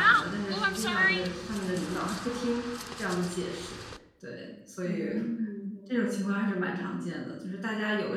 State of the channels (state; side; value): identical; both; correlation 1.00